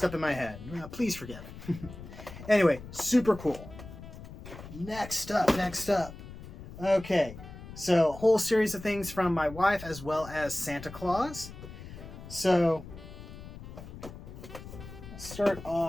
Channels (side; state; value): left; noise; rumble, 14 dB below the sound